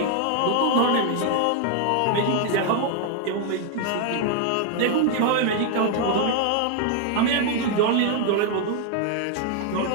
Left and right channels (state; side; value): different; both; correlation 0.00